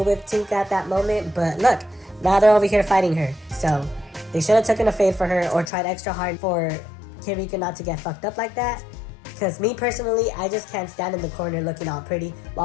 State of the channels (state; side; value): drops out; right; at 5.7 s